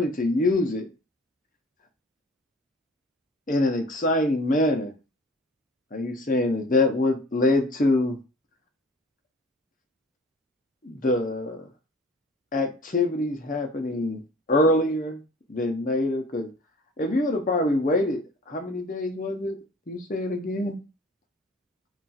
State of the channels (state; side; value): normal; both; correlation 0.46